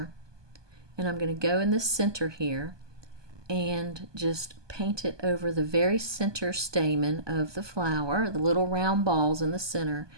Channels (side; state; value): left; late; 1.2 ms